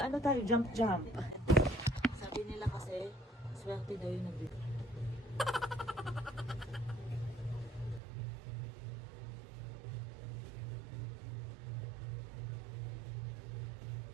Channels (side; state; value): left; drops out; at 8.0 s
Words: tayo? Jump. Sabi nila kasi, swerte daw yung nabili.